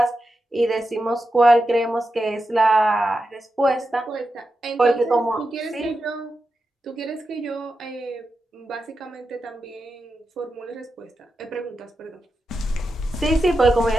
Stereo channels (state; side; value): normal; both; correlation 0.89